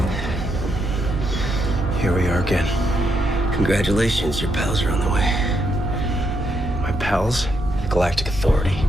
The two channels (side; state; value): both; normal; correlation 0.78